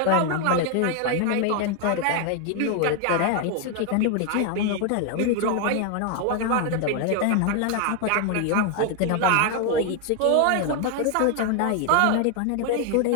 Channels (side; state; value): both; different; correlation 0.01